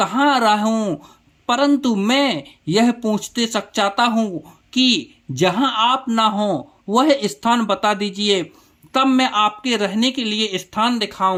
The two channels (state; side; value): identical; both; correlation 1.00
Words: रहूं, परंतु मैं यह पूछते सक चाहता हूँ कि जहां आप ना हो वह स्थान बता दीजिए, तब मैं आपके रहने के लिए स्थान